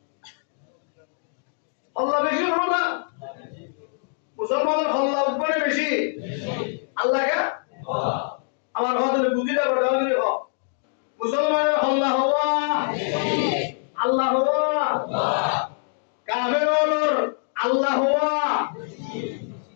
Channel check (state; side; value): silent; right; digital silence